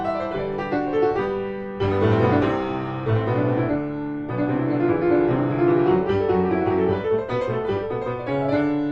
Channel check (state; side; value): identical; both; correlation 1.00